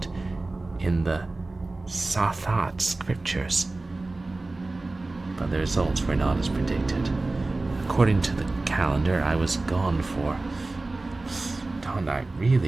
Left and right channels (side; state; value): left; quieter; 3.2 dB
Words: in the Sathat scriptures. But the results were not as predicted. According to the calendar, I was gone for... Don't I